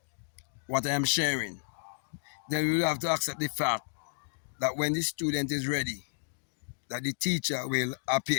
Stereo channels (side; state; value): right; silent; digital silence